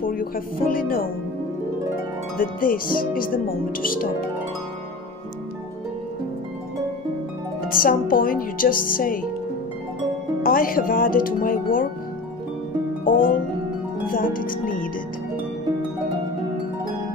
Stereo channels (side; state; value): right; quieter; 3.2 dB